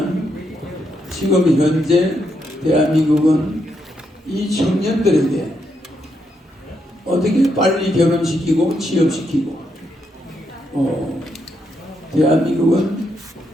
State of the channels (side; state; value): both; normal; correlation 0.79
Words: 지금 현재 대한민국은 이 청년들에게 어떻게 빨리 결혼시키고 취업시키고 대한민국은